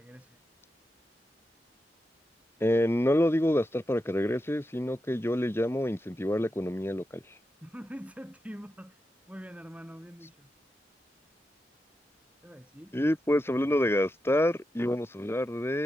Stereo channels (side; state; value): both; normal; correlation 0.89